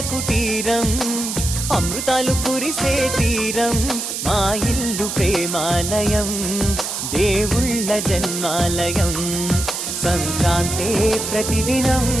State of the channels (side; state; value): right; noise; hiss, 4 dB below the sound